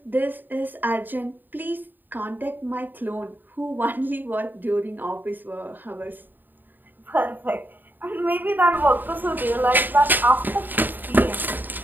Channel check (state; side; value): late; left; 0.090 ms